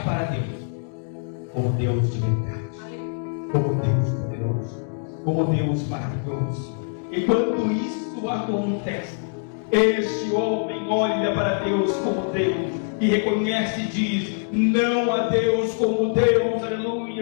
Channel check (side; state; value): right; silent; digital silence